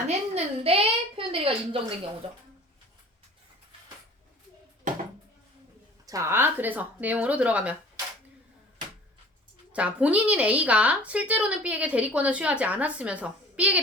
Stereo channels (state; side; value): normal; both; correlation 0.46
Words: 했는데 표현 대리가 인정된 경우죠. 자, 그래서 내용으로 들어가면 자, 본인인 A가 실제로는 B에게 대리권을 수여하지 않았으면서 B에게